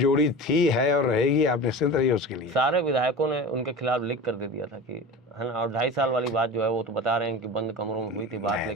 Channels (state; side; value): normal; both; correlation 0.32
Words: थी, है और रहेगी, आप निश्चिंत रहिए उसके लिए। सारे विधायकों ने उनके खिलाफ लिख कर दे दिया था कि है ना। और 2.5 साल वाली बात जो है वो तो बता रहे हैं कि बंद कमरों में हुई थी बात, नहीं,